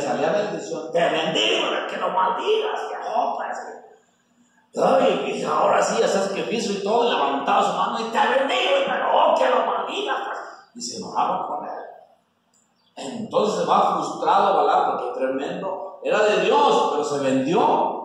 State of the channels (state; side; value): identical; both; correlation 1.00